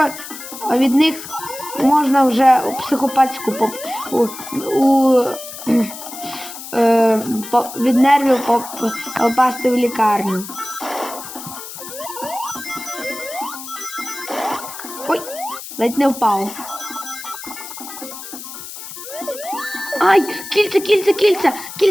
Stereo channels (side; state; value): left; noise; hiss, 12 dB below the sound